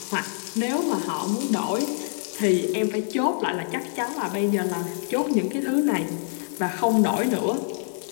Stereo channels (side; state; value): right; silent; 61 dB below the other